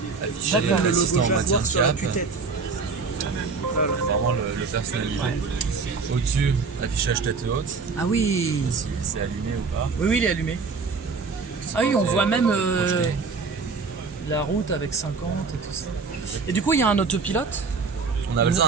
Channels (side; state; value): left; quieter; 4.7 dB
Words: affiché D'accord. Le l'assistant logo en matière Jaguar de sur la cap. tue-tête. Voilà. Vraiment le personnalisé. Au-dessus, affichage tête haute, Ah oui. si c'est allumé ou pas. Oui, oui, il est allumé. Ah oui, on voit même projeté. la route avec 50 et tout ça. Et du coup, il y a un autopilote. On appelle ça